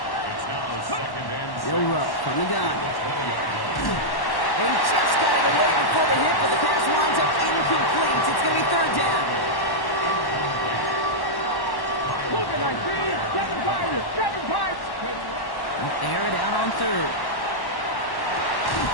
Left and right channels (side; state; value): right; late; 1.1 ms